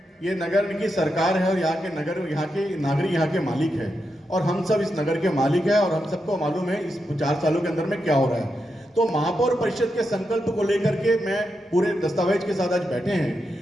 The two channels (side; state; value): both; normal; correlation 0.86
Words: ये नगर की सरकार है और यहाँ के नागरिक यहाँ के मालिक है और हम सब इस नगर के मालिक है और हम सबको मालूम है इस 4 सालों के अंदर में क्या हो रहा है। तो महापौर परिषद के संकल्प को लेकर के मैं पूरे दस्तावेज के साथ आज बैठे